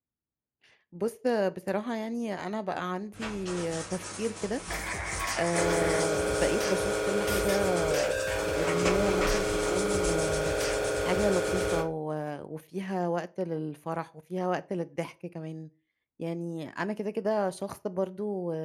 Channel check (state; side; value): identical; both; correlation 1.00